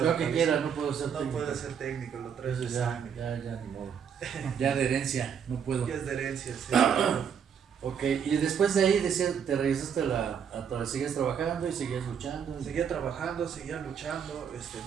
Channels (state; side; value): quieter; left; 7.5 dB